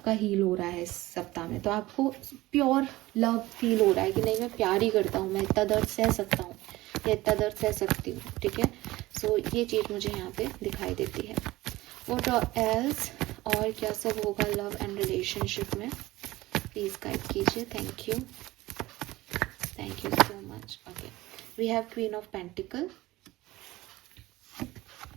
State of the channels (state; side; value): quieter; left; 18.3 dB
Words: हील हो रहा है इस सप्ताह में। तो आपको प्योर लव फील हो रहा है कि नहीं, मैं प्यार ही करता हूँ, मैं इतना दर्द सह सकता हूँ या इतना दर्द सह सकती हूँ, ठीक है। सो ये चीज़ मुझे यहाँ पे दिखाई देती है। व्हाट एल्स, और क्या सब होगा लव एंड रिलेशनशिप में, प्लीज गाइड कीजिए। Thank you so much. Okay, we have queen of pentacle,